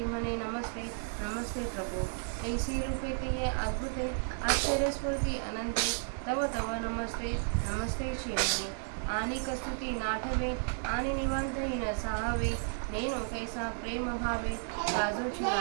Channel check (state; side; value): silent; left; 56 dB below the other